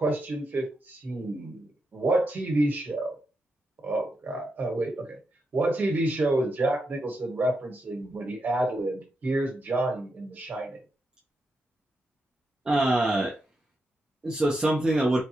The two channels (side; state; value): both; normal; correlation 0.85